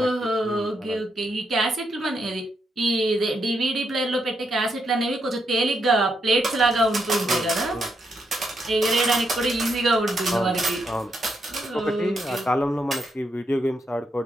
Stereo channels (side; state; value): both; normal; correlation 0.80